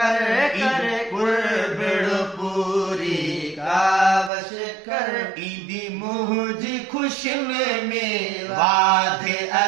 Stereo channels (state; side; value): drops out; left; at 4.3 s